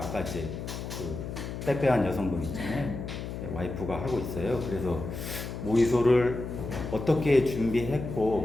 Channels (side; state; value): left; noise; hum, 7 dB below the sound